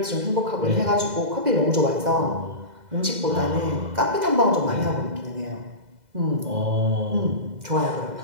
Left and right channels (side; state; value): left; late; 2.0 ms